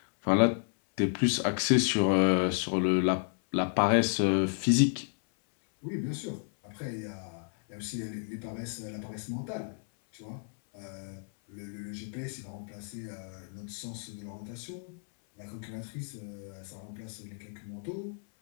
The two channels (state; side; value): silent; right; 57 dB below the other